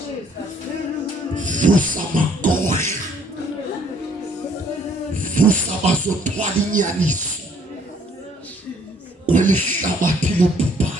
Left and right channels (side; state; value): both; normal; correlation 0.62